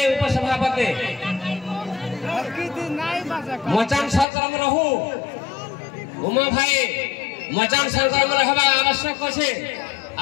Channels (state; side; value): drops out; right; at 4.2 s